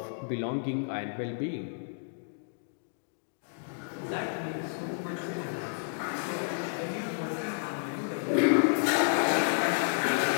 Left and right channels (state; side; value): silent; right; digital silence